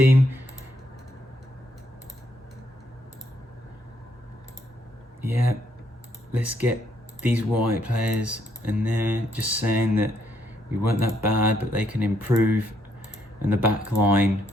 Yeah, let's get these white players in there, just saying that we weren't that bad, but they can improve. And the back line,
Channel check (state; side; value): normal; both; correlation 0.73